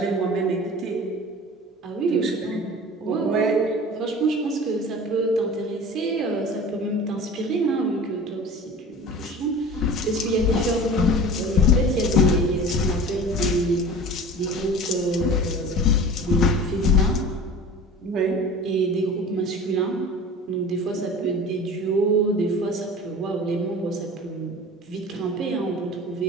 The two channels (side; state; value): both; normal; correlation 0.39